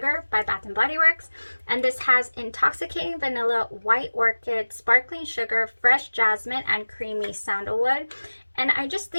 by Bath and Body Works, and this has intoxicating vanilla, white orchid, sparkling sugar, fresh jasmine, and creamy sandalwood. And I just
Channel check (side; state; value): both; inverted; correlation -1.00